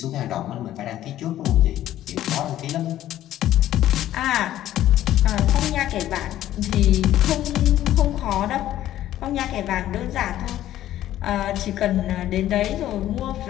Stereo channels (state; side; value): quieter; right; 13.0 dB